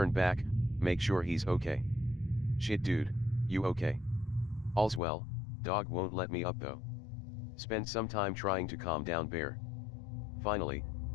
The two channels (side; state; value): right; drops out; at 5.0 s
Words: back, make sure he's okay. Shit dude, you okay? All's well, dog won't let me up though. Spend some time trying to calm down Bear. Finally,